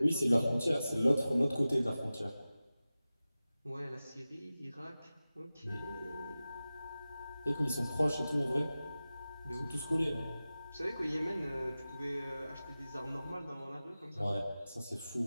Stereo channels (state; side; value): inverted; both; correlation -0.95